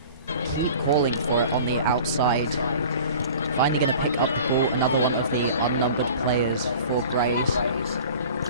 Keep calling for it on the outside. Finally going to pick up the ball. Another one of the unnumbered players for Grays.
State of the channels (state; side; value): inverted; both; correlation -0.43